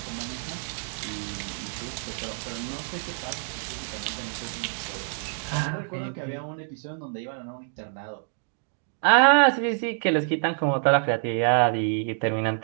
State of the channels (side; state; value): left; silent; 60 dB below the other